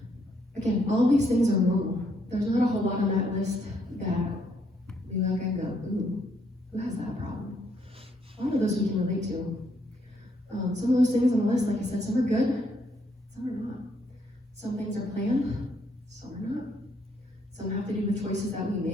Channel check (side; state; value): both; normal; correlation 0.72